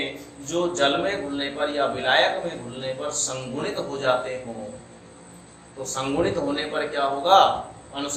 जो जल में घुलने पर या विलायक में घुलने पर संगुणित हो जाते हो, तो संगुणित होने पर क्या होगा,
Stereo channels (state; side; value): identical; both; correlation 1.00